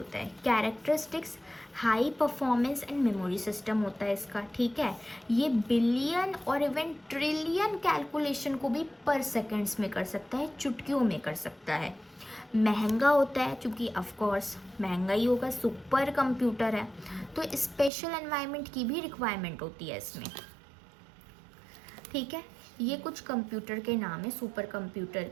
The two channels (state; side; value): drops out; left; at 17.9 s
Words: है। Characteristics, high performance and memory system होता है इसका। ठीक है, ये बिलियन और इवन ट्रिलियन कैलकुलेशन को भी पर सेकेंड्स में कर सकता है, चुटकियों में कर सकता है। महंगा होता है, क्योंकि ऑफ कोर्स महंगा ही होगा, सुपर कंप्यूटर है, तो स्पेशल एनवायरनमेंट की भी रिक्वायरमेंट होती है इसमें। ठीक है, ये कुछ कंप्यूटर के नाम है सुपर कंप्यूटर